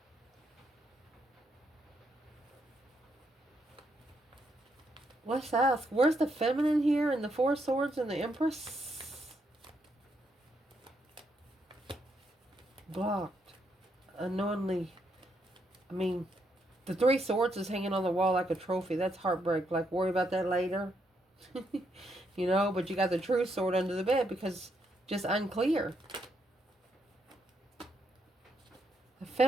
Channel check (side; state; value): both; normal; correlation 0.77